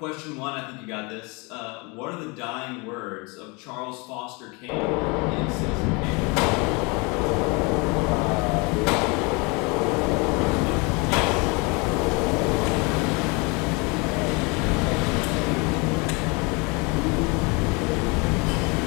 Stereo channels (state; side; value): quieter; right; 29.1 dB